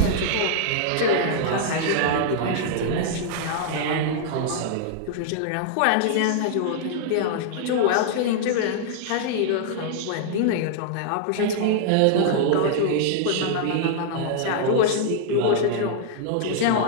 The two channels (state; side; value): different; both; correlation -0.01